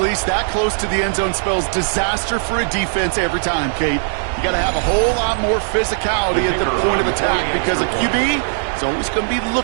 that close to the end zone spells disaster for a defense every time, Kate. You got to have a whole lot more physicality at the point of attack because a QB It's always going to be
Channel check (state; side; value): silent; left; digital silence